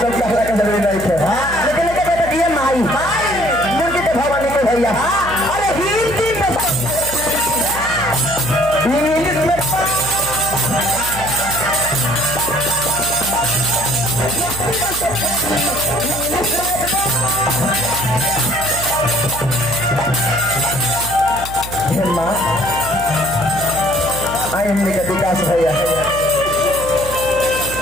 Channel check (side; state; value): right; noise; hum, 11 dB below the sound